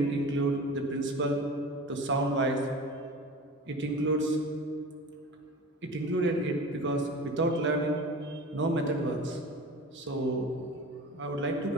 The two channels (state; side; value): normal; both; correlation 0.36